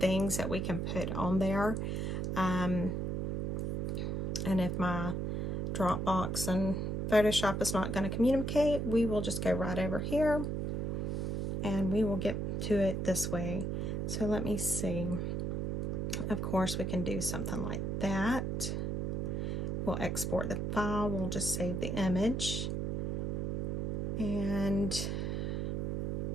that we can put on there. And if my Dropbox and Photoshop is not going to communicate, we will just go right over here and we will get to it this way. So let me see. Of course, we can do something like that. We'll export the file. We'll just save the image. And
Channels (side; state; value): right; noise; hum, 1 dB below the sound